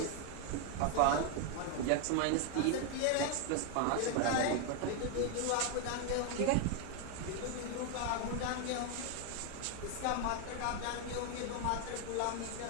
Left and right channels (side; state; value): both; different; correlation 0.01